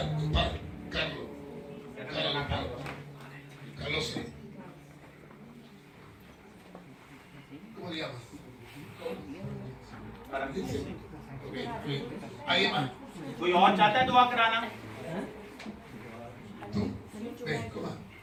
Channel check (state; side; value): identical; both; correlation 1.00